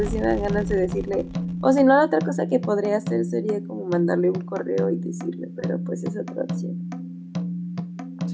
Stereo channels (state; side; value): identical; both; correlation 1.00